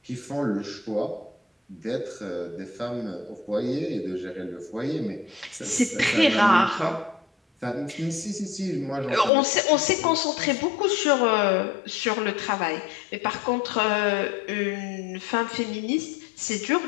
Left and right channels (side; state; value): right; drops out; at 9.3 s